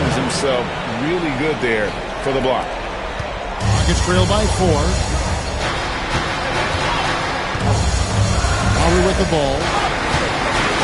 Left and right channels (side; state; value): both; identical; correlation 1.00